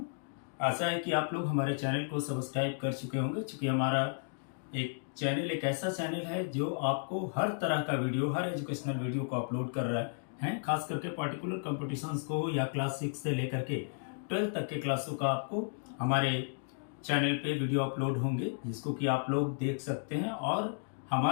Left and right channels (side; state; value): right; silent; digital silence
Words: आशा है कि आप लोग हमारे चैनल को सब्सक्राइब कर चुके होंगे, क्योंकि हमारा एक चैनल एक ऐसा चैनल है जो आपको हर तरह का वीडियो, हर एजुकेशनल वीडियो को अपलोड कर रहा है। खास करके पार्टिकुलर कॉम्पिटिशन्स को या क्लास 6 से लेकर के 12 तक के क्लासों का आपको हमारे चैनल पे वीडियो अपलोड होंगे, जिसको कि आप लोग देख सकते हैं। और